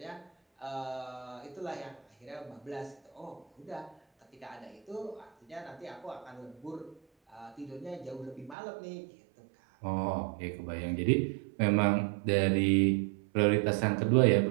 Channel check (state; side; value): drops out; left; at 8.6 s